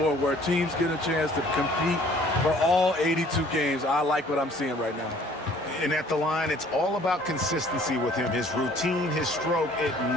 where teams get a chance to compete for all 82 games. I like what I'm seeing right now. And at the line, it's all about consistency with him. His routine, his stroke, it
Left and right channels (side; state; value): both; normal; correlation 0.55